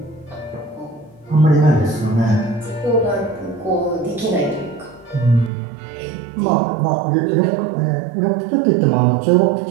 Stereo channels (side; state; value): left; drops out; at 5.5 s